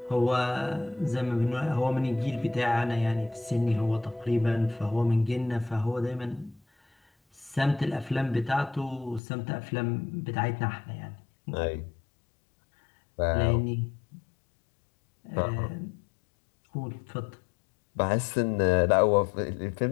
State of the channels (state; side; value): drops out; right; at 9.2 s